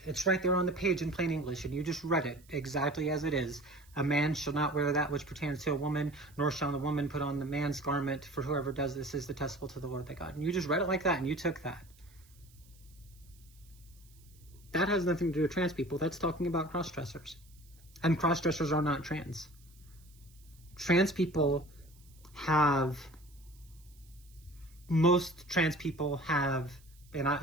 it's right there on the page in plain English, and you just read it exactly as it is. A man shall not wear that which pertains to a woman, nor shall the woman put on the man's garment, for whoever does this is detestable to the Lord thy God. And you just read it like that, and you took that. That has nothing to do with trans people. That's talking about cross-dressers. And cross-dressers are not trans. Trans people have, most trans people have, and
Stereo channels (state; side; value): noise; right; hiss, 28 dB below the sound